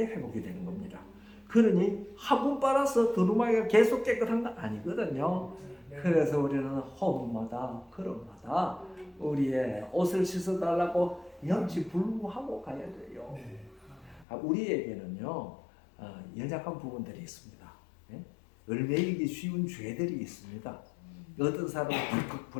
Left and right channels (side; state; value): right; drops out; at 14.2 s